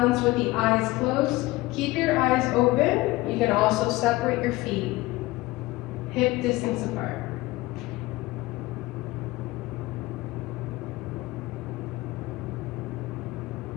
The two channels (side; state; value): right; quieter; 19.6 dB